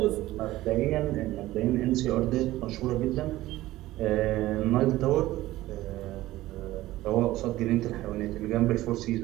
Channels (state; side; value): quieter; left; 16.5 dB